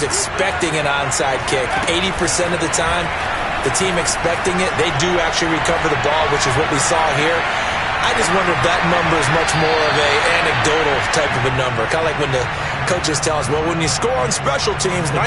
expecting an onside kick, 80% of the time, the team expecting it, they do actually recover the ball, which is what we saw here. I just wonder if that number is much more of a anecdotal type of a number. Kind of like when the coaches tell us, well, when you score on special teams,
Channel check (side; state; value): both; identical; correlation 1.00